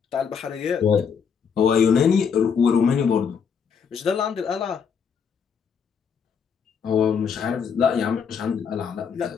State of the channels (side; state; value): right; quieter; 6.6 dB